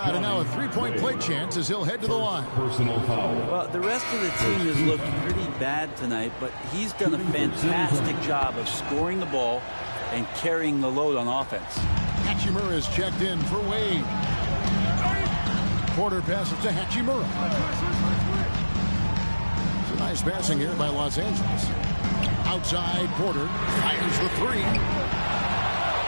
and now a 3-point play chance as he'll head to the line. Personal foul. Well, the rest of the team has looked pretty bad tonight, but he's done a fantastic job of scoring the ball and carrying the load on offense. Hachimura is checked in for Wade. Porter passes to Hachimura. Nice passing here by Los Angeles. Outside, Porter fires the 3.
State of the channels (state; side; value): inverted; both; correlation -1.00